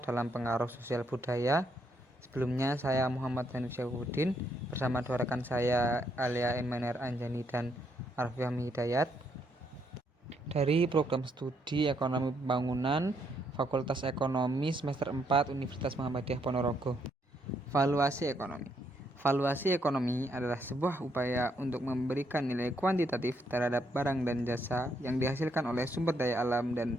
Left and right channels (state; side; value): normal; both; correlation 0.74